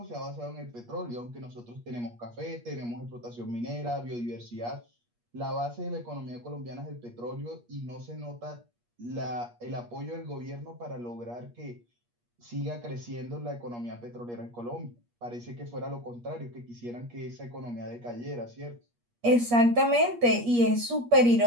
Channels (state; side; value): late; left; 8.4 ms